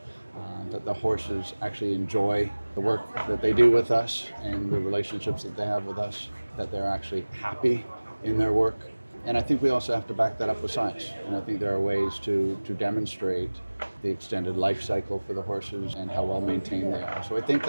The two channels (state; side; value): inverted; both; correlation -1.00